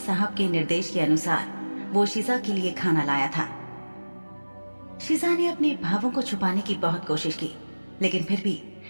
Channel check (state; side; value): inverted; both; correlation -1.00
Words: के निर्देश के अनुसार वो शिजा के लिए खाना लाया था। शिजा ने अपने भावों को छुपाने की बहुत कोशिश की, लेकिन फिर भी